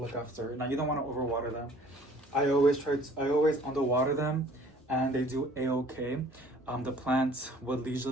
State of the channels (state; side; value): normal; both; correlation 0.54